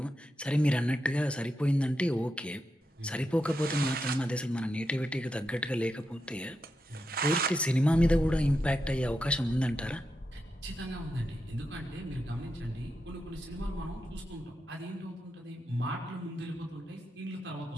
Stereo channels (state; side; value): normal; both; correlation 0.86